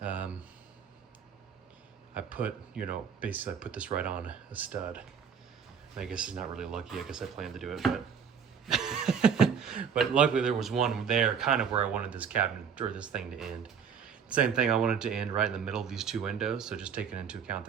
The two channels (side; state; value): left; quieter; 7.1 dB